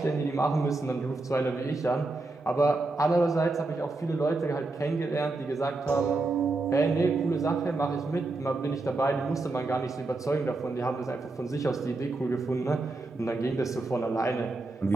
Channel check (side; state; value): left; quieter; 3.2 dB